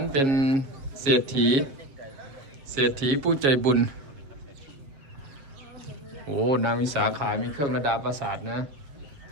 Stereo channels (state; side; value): late; left; 7.3 ms